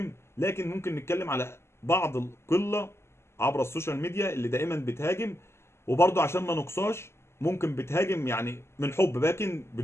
لكن ممكن نتكلم على بعض القله عبر السوشيال ميديا اللي دائما بتهاجم، وبرضه عشان ما نقصاش ممكن بتهاجم يعني من حب لكن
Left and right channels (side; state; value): right; late; 0.12 ms